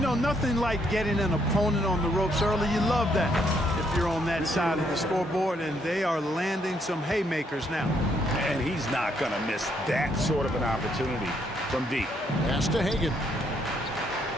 nothing like getting an opponent on the ropes early. You love that if you're on that side of the scoreboard, and they are landing some haymakers now. And he's not going to miss that sort of an opportunity from deep. Pass to Hagan.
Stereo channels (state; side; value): normal; both; correlation 0.72